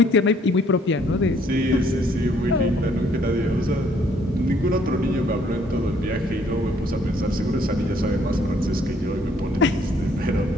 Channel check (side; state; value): both; normal; correlation 0.64